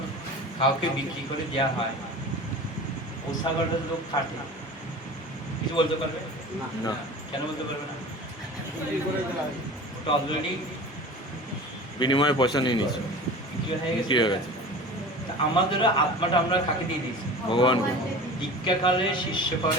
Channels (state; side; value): normal; both; correlation 0.37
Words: কাউকে বিক্রি করে দেওয়া হয়, ও ছাগলটা লোক কাটে, কিছু বলতে পারবে না। কেন বলতে পারবে না? ওটা অলরেডি বিনিময়ে পয়সা নিয়ে নিচ্ছে, বিক্রি হয়ে বিক্রি হয়ে গেছে। গেছে তা আমাদেরও আত্মাটা আমরা কাকে দিয়ে দিয়েছি? ভগবানকে। দীক্ষাকালে শিষ্য